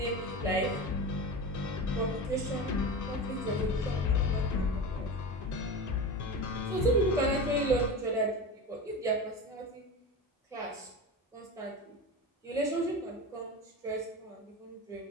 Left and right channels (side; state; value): both; normal; correlation 0.27